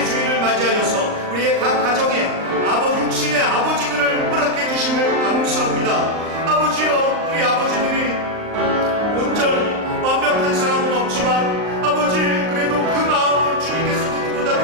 주일을 맞이하여서 우리의 각 가정에 육신의 아버지들을 허락해 주심을 감사합니다. 아버지여, 우리 아버지들이 온전히 완벽한 사람은 없지만 아버지, 그래도 그 마음은 주님께서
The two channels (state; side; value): late; left; 38 ms